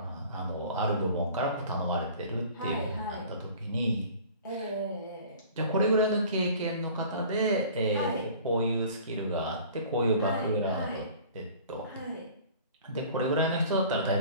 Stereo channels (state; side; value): inverted; both; correlation -0.46